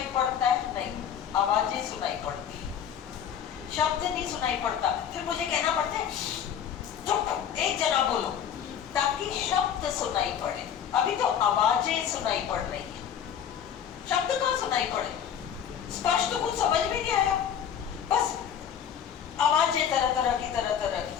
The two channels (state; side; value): quieter; right; 8.8 dB